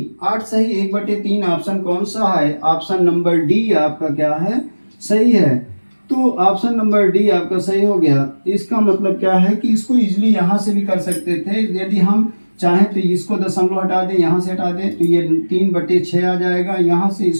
8 सही 1/3 ऑप्शन कौन सा है, ऑप्शन नंबर डी आपका क्या है, सही है। तो ऑप्शन नंबर डी आपका सही हो गया। इसका मतलब क्या है कि इसको इजीली यहाँ से भी कर सकते थे, यदि हम चाहें तो इसको दशमलव हटा दें, यहाँ से हटा दें तो ये 3/6 आ जाएगा। यहाँ से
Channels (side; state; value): both; inverted; correlation -1.00